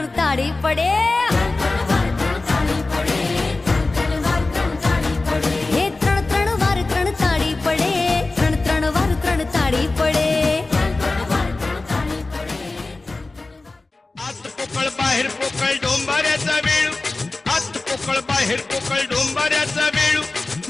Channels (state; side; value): quieter; right; 3.3 dB